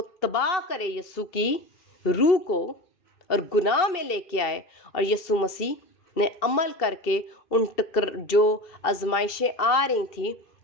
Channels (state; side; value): late; right; 2.7 ms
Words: تباہ کرے یسوع کی روح کو اور گناہ میں لے کے آئے, اور یسوع مسیح نے عمل کر کے ان جو آزمائشیں آ رہی تھیں